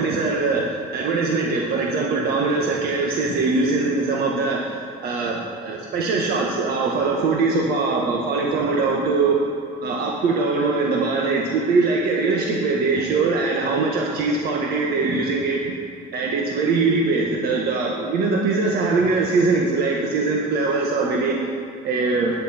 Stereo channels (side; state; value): left; quieter; 3.3 dB